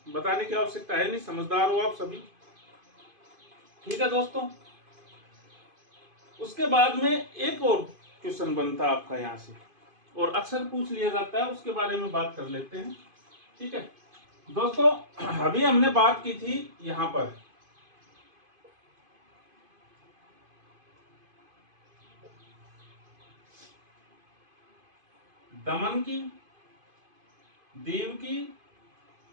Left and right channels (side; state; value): left; late; 2.5 ms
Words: बताने की आवश्यकता है नहीं, समझदार हो आप सभी। ठीक है दोस्तों, उसके बाद में एक और क्वेश्चन बनता है आपका यहां से, और अक्सर पूछ लिया जाता है, उसके बारे में बात कर लेते हैं। ठीक है दोस्तों, अभी हमने बात की थी यहां पर दमन की, दीव की,